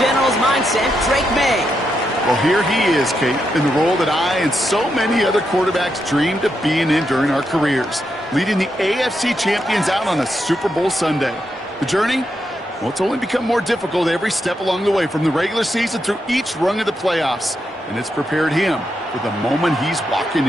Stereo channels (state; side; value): normal; both; correlation 0.83